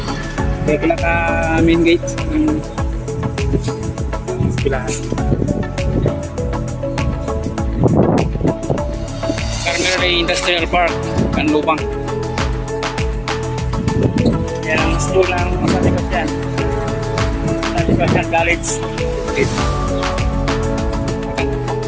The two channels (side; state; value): both; identical; correlation 1.00